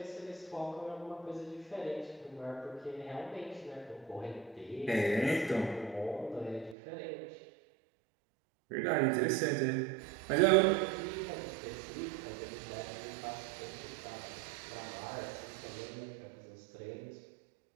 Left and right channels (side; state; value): left; drops out; at 6.8 s